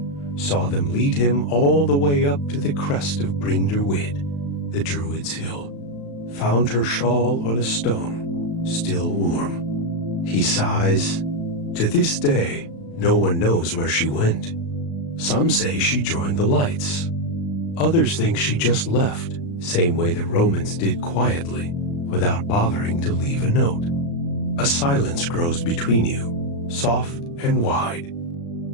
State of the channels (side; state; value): right; late; 35 ms